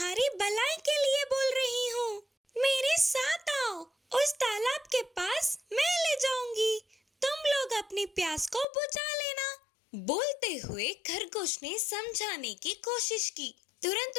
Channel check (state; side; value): drops out; right; at 8.7 s